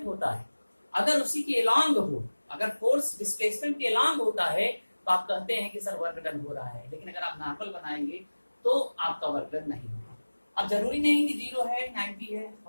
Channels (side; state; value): both; inverted; correlation -1.00